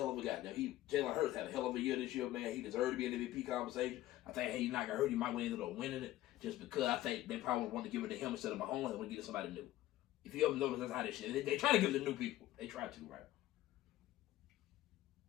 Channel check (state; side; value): quieter; right; 15.2 dB